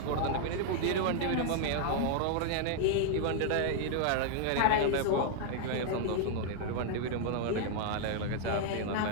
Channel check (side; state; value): both; different; correlation 0.00